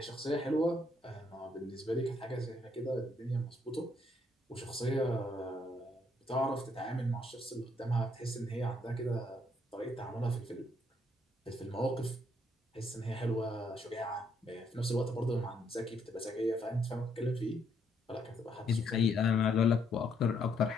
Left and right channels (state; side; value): normal; both; correlation 0.72